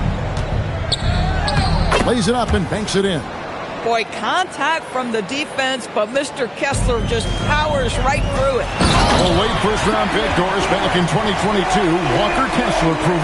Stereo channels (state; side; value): identical; both; correlation 1.00